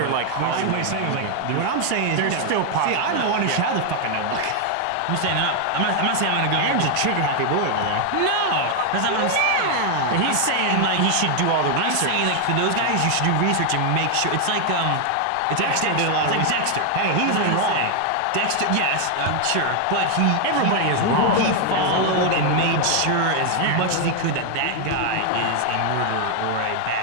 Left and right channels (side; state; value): both; different; correlation 0.00